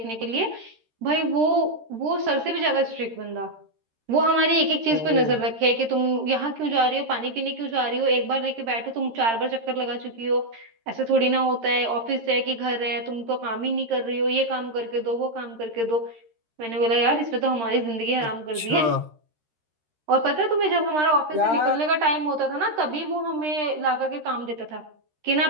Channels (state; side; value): late; left; 13 ms